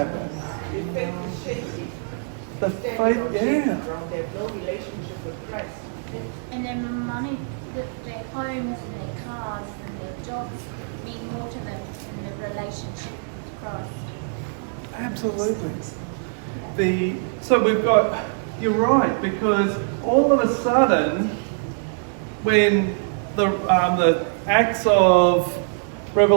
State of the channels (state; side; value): silent; left; digital silence